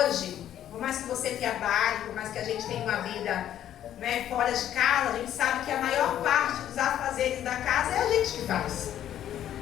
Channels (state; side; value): quieter; right; 11.1 dB